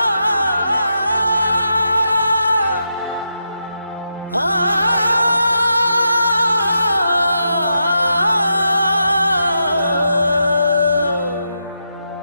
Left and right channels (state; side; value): inverted; both; correlation -0.84